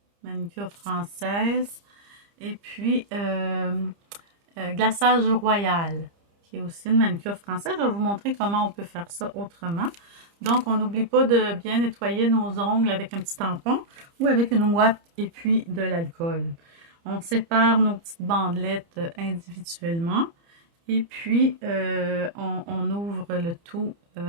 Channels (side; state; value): left; late; 30 ms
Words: manucure française, et puis glaçage royal, qui est aussi une manucure française. Je vais vous montrer comment on peut faire ça autrement. Donc, on n'oublie pas de bien nettoyer nos ongles avec un petit tampon ou avec une ouate et puis de l'alcool. On sépare nos petites bandelettes individuellement et puis on ouvre le tout